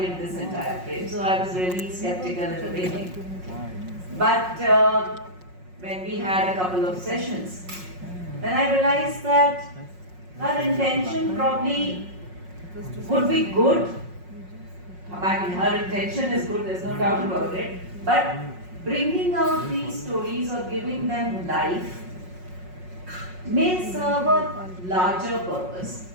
in this entire frame. So I was really skeptical at the beginning. But when we had a couple of sessions, then I realized that her intention probably would be good. I mean, her intention is good, there's no doubt about it. But bringing out these stories or giving them life may serve a larger purpose.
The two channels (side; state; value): left; late; 5.5 ms